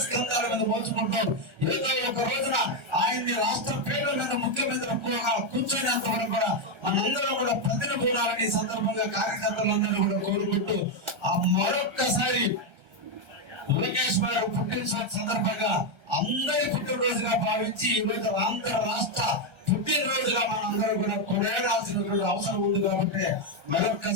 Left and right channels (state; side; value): late; left; 1.4 ms